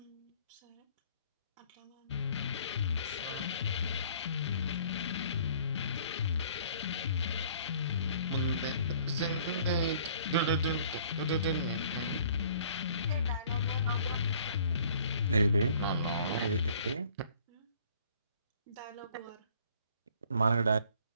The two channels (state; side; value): inverted; both; correlation -0.56